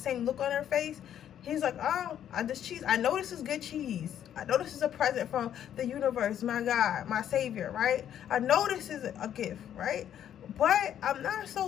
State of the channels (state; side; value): quieter; right; 10.2 dB